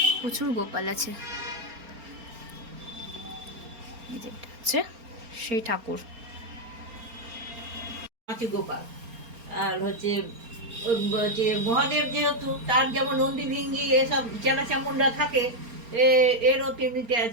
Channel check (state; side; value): late; left; 4.3 ms